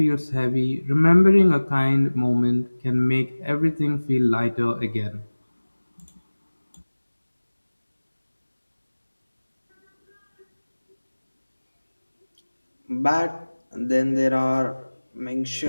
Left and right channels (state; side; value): inverted; both; correlation -1.00